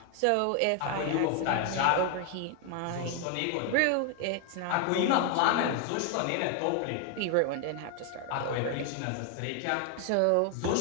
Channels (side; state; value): both; different; correlation 0.00